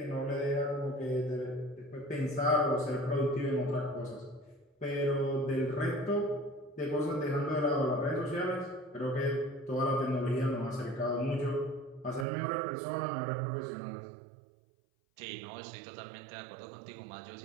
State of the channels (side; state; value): left; drops out; at 12.2 s